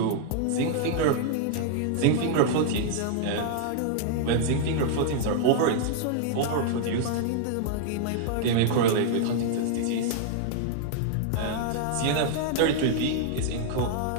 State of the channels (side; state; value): both; different; correlation -0.01